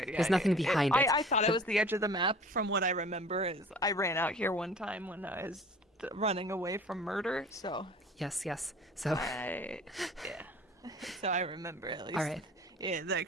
Yeah, there's nothing behind it. I thought it was the edge of the map. From what I remember, is I ran out here one time when I was running away from murder. So yes. So so I remember at least. All right. Yeah, that I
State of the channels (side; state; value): both; normal; correlation 0.46